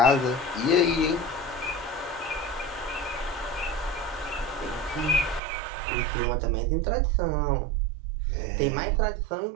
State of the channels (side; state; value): left; drops out; at 5.4 s